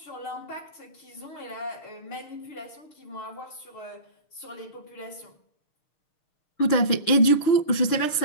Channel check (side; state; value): right; late; 6.6 ms